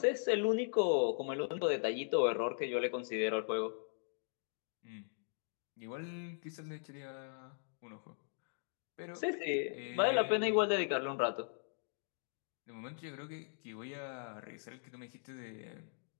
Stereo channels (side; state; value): right; silent; digital silence